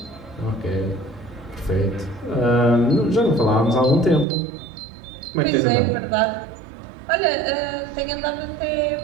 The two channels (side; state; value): left; drops out; at 4.2 s